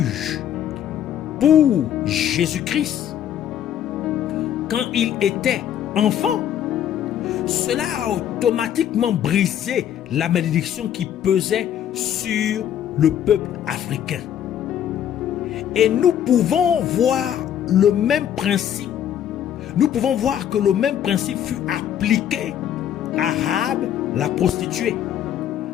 pour Jésus-Christ quand il était enfant, cela a automatiquement brisé la malédiction qui pesait sur le peuple africain. Et nous pouvons voir le même principe. Nous pouvons voir que le même principe fut appliqué à Rahab, la prostituée.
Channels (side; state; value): right; quieter; 10.1 dB